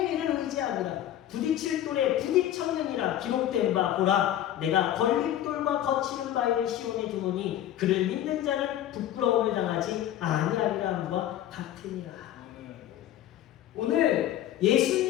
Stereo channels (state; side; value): quieter; right; 12.1 dB